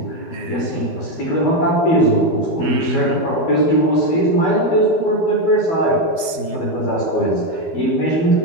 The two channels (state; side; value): late; right; 12 ms